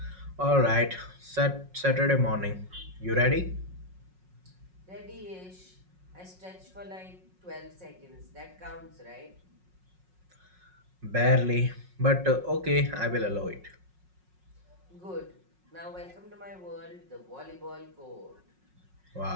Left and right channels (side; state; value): left; late; 5.5 ms